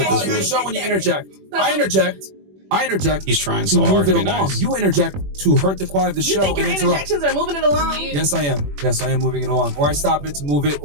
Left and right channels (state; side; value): late; left; 21 ms